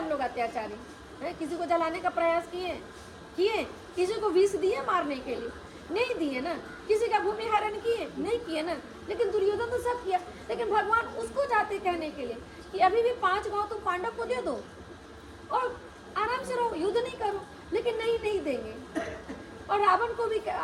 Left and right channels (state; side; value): identical; both; correlation 1.00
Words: लोग अत्याचारी है। किसी को जलाने का प्रयास किए, किसी को विष दिए मारने के लिए, नहीं दिए ना, किसी का भूमि हरण नहीं किए ना। लेकिन दुर्योधन तो सब किया, लेकिन भगवान उसको जाते कहने के लिए कि अभी भी 5 गांव तुम पांडव को दे दो और आराम से रहो, युद्ध नहीं करो, लेकिन नहीं देंगे। और रावण को भी